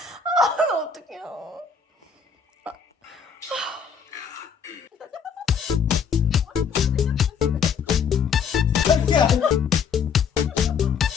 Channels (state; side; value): quieter; right; 6.4 dB